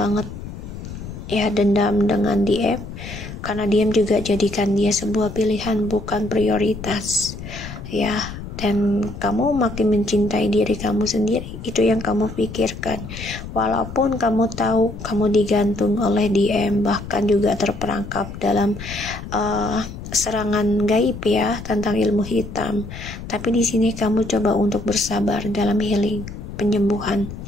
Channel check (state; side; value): noise; left; rumble, 11 dB below the sound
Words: ya, dendam dengan DM, karena DM juga jadikan dia sebuah pilihan, bukan prioritas ya. Dan kamu makin mencintai diri kamu sendiri, itu yang kamu pikirkan. Walaupun kamu tahu kamu digantung oleh DM, bahkan juga terperangkap dalam serangan gaib ya tentang ilmu hitam, tapi di sini kamu coba untuk bersabar dalam healing, penyembuhan.